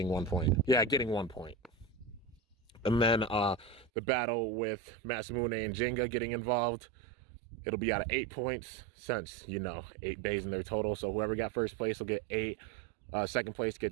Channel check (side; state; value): left; drops out; at 3.9 s